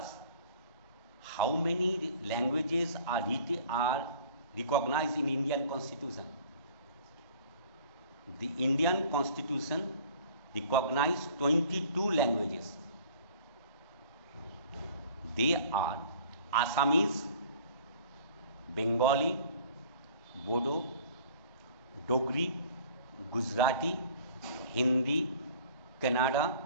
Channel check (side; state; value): both; inverted; correlation -0.50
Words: How many languages are recognized in Indian Constitution? The Indian Constitution recognizes 22 languages. They are Assamese, Bengali, Bodo, Dogri, Gujarati, Hindi, Kannada,